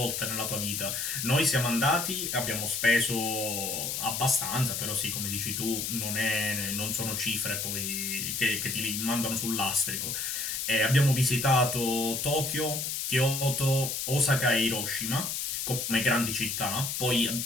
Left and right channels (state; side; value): noise; left; hiss, 2 dB below the sound